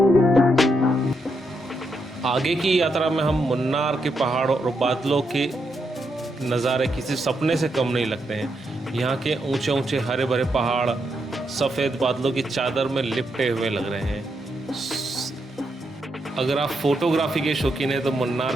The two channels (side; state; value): both; normal; correlation 0.81